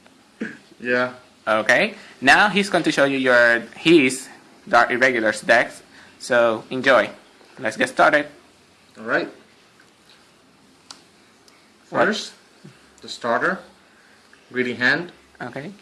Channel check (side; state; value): both; identical; correlation 1.00